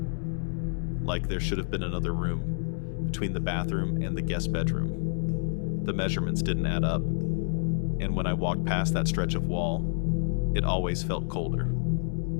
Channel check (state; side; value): silent; right; digital silence